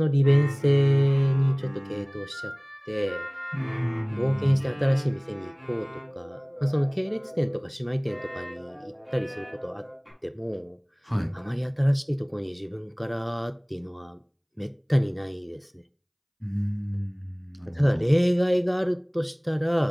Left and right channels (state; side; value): identical; both; correlation 1.00